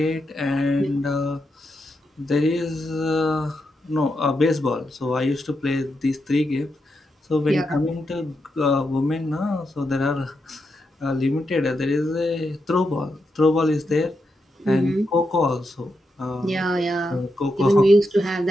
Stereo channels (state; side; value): normal; both; correlation 0.84